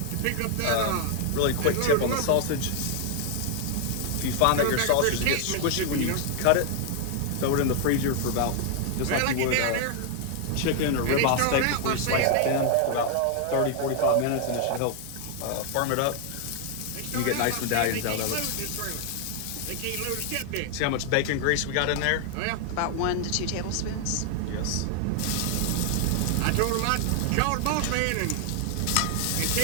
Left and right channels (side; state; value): both; different; correlation 0.00